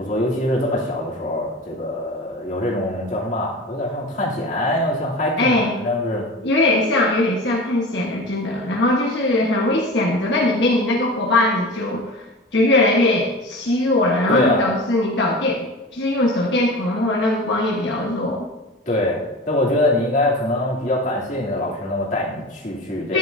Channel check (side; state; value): both; normal; correlation 0.33